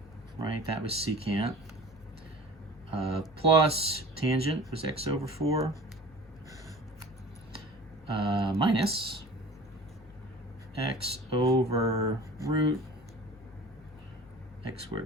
right? That was secant. Plus tangent was x over 4. Minus x over root x squared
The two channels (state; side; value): normal; both; correlation 0.42